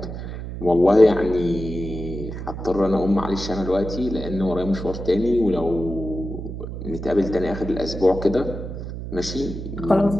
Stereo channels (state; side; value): noise; right; hum, 8 dB below the sound